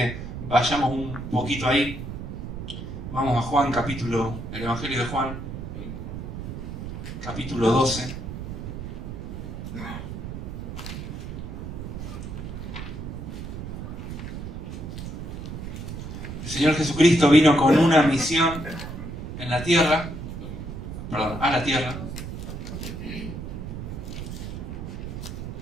vayamos un poquito ahí. Vamos a Juan, el Evangelio de Juan, capítulo 12. El Señor Jesucristo vino con una misión a la tierra.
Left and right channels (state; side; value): noise; right; rumble, 7 dB below the sound